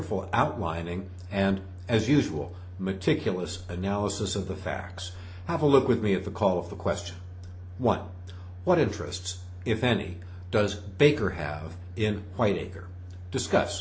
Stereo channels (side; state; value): both; identical; correlation 1.00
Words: outlining and, as usual, meticulous analysis of the facts. Have a look with me at the call of the question. 1. What interests, if any, does Baker have in Whiteacre?